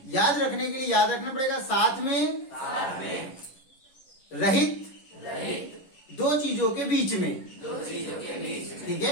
याद रखने के लिए याद रखना पड़ेगा, साथ में, रहित, दो चीजों के बीच में, ठीक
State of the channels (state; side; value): late; right; 11 ms